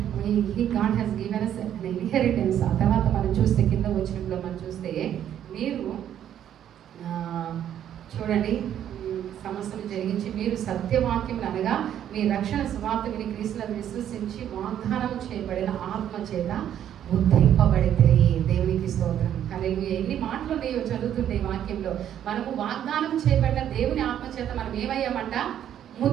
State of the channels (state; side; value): quieter; left; 10.3 dB